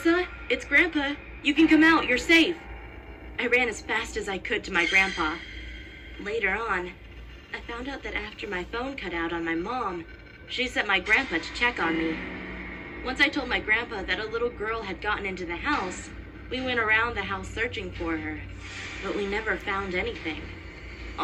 it's Grandpa. You can come out, you're safe." I ran as fast as I could to my grandpa. Later on, I found out that after my phone cut out on my mom, she sent my grandpa to check on me. Once I told my grandpa that a little girl had gotten into the house, we went around the house searching for her, but we never found anything.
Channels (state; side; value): identical; both; correlation 1.00